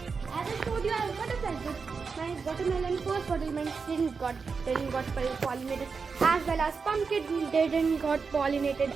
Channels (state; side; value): quieter; left; 5.1 dB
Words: As I showed you, I have butterflies. My watermelon first watermelon didn't got pollinated, as well as pumpkin didn't got pollinated